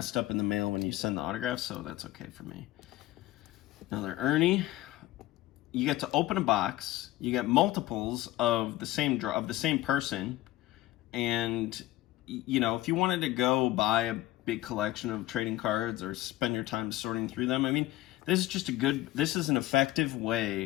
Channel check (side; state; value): right; quieter; 16.4 dB